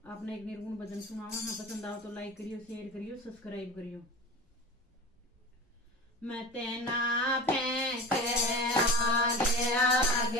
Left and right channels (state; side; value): normal; both; correlation 0.33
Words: आपने एक निर्गुण भजन सुनावा। हाँ, पसंद आओ तो लाइक करियो, शेयर करियो, सब्सक्राइब करियो। मैं तेना फेंक आगे